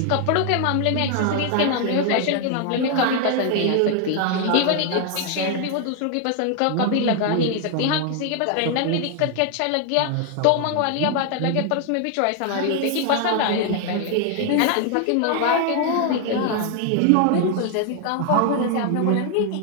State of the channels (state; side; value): different; both; correlation 0.00